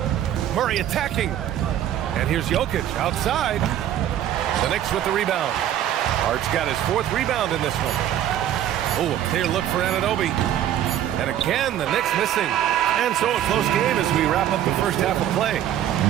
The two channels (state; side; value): quieter; left; 11.3 dB